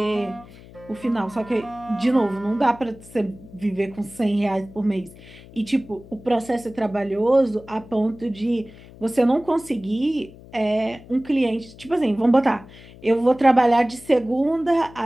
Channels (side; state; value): left; noise; hum, 20 dB below the sound